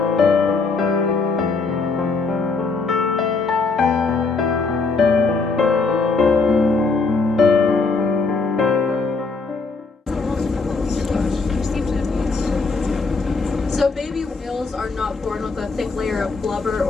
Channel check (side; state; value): right; quieter; 4.2 dB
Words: So baby whales are not born with a thick layer of blubber